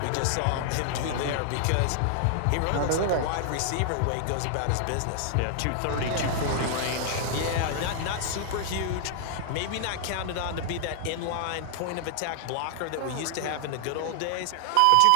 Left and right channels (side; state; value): both; different; correlation 0.00